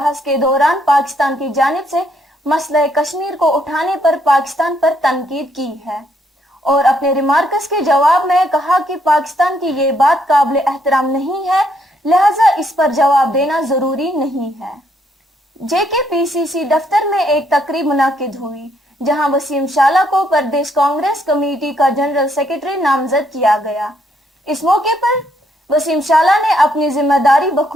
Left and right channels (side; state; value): both; normal; correlation 0.71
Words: के दौरान पाकिस्तान की जानिब से मसला कश्मीर को उठाने पर पाकिस्तान पर तनकीद की है और अपने रिमार्क्स के जवाब में कहा कि पाकिस्तान की ये बात काबिल एहतराम नहीं है, लिहाजा इस पर जवाब देना जरूरी नहीं है। JKPCC दफ्तर में एक तकरीब मुनाकिद हुई, जहां वसीम शाला को प्रदेश कांग्रेस कमेटी का जनरल सेक्रेटरी नामजद किया गया। इस मौके पर वसीम शाला ने अपनी जिम्मेदारी